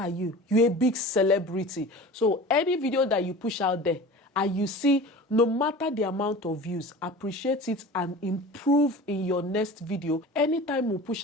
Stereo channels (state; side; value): normal; both; correlation 0.37